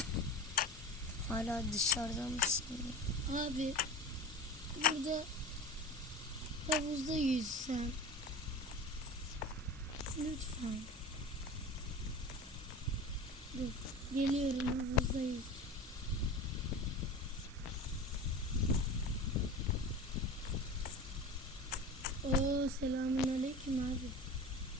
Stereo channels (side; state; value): both; normal; correlation 0.33